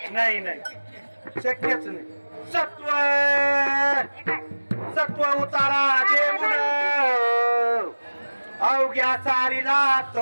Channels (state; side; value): inverted; both; correlation -1.00